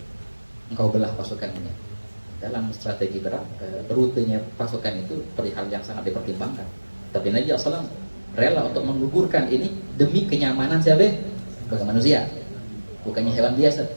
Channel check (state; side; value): inverted; both; correlation -1.00